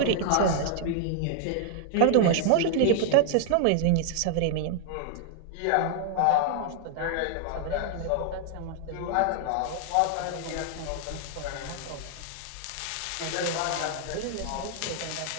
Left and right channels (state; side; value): different; both; correlation 0.00